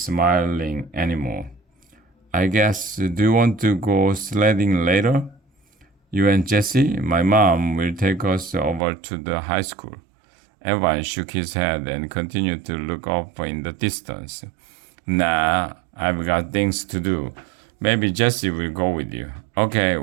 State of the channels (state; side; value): drops out; left; at 8.8 s